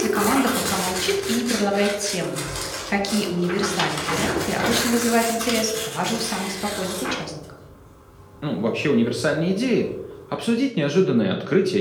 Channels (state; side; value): identical; both; correlation 1.00